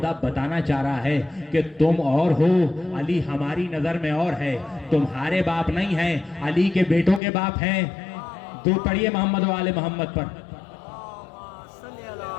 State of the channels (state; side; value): drops out; right; at 7.2 s